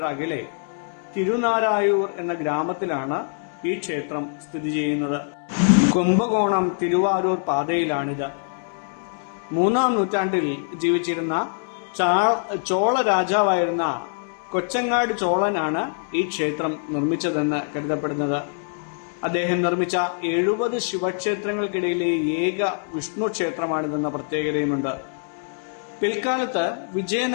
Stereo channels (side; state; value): right; silent; digital silence